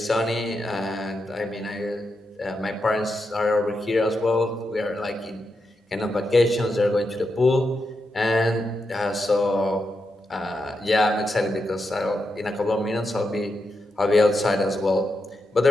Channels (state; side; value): normal; both; correlation 0.85